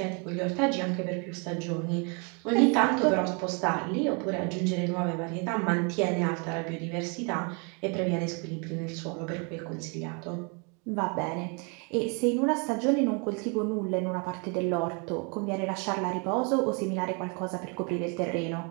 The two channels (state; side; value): quieter; left; 34.6 dB